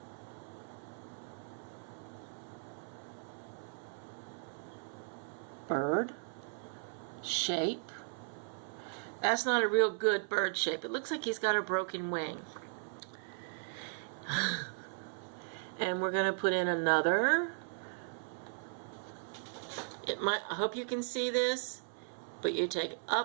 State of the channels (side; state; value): left; silent; 53 dB below the other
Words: bird shape. That's not a real good bird shape. It looks like he's got a broken wing. And we're going to put in another. I hope you can see this, but you take